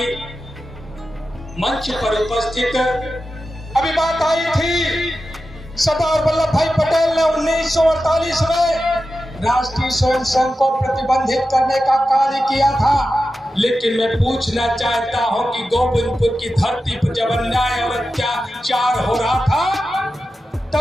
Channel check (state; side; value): normal; both; correlation 0.92